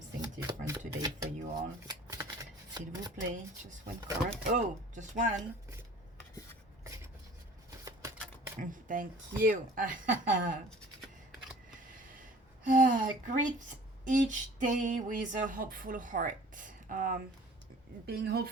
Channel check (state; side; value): normal; both; correlation 0.48